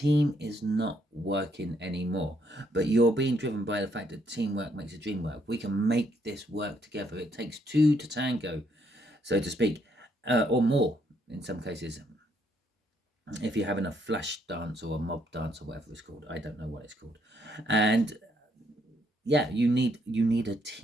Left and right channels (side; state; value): both; normal; correlation 0.72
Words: is not working anymore, but you're being driven by the fact that teamwork makes the dream work. We can make this work together. It takes two to tango, so to speak. Or more in some cases, if you're having a flash dance or a mob dance or whatever it's called. I don't know what it's called. And yeah, you need a